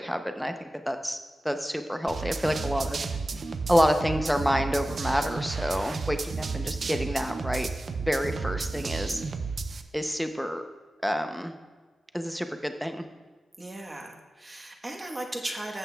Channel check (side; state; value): both; normal; correlation 0.95